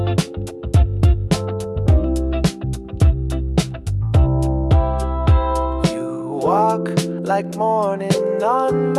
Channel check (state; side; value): identical; both; correlation 1.00